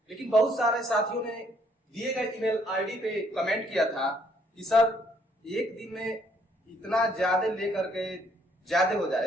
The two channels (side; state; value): both; normal; correlation 0.67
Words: लेकिन बहुत सारे साथियों ने दिए गए ईमेल आईडी पे कमेंट किया था कि सर एक दिन में इतना ज्यादा लेकर के ज्यादा हो